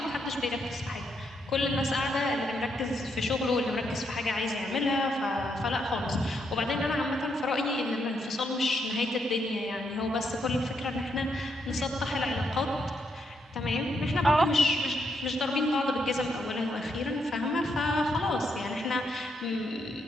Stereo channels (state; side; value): normal; both; correlation 0.78